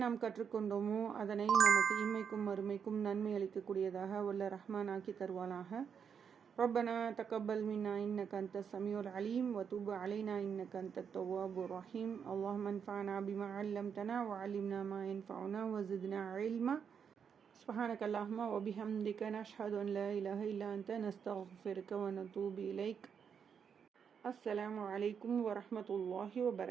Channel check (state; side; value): quieter; left; 7.1 dB